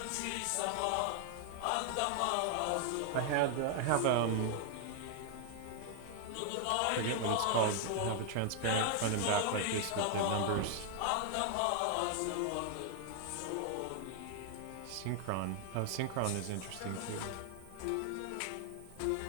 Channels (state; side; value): different; both; correlation 0.00